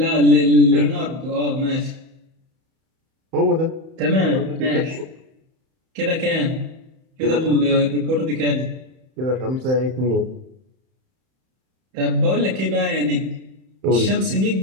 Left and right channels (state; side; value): late; left; 31 ms